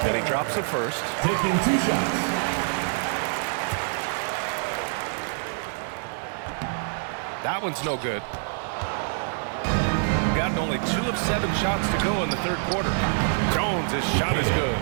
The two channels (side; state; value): left; silent; digital silence